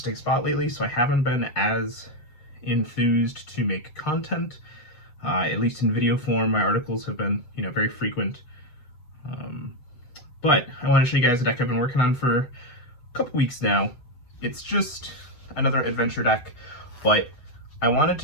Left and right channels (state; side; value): late; right; 8.3 ms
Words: spot lately. So I haven't been as enthused to make content, at least in video form. My articles have been very frequent, but I want to show you guys a deck I've been working on for a couple weeks now. It's just another adventure deck, but I wanted